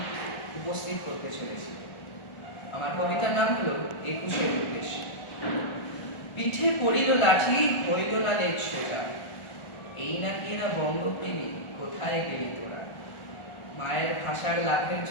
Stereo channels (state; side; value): late; right; 1.4 ms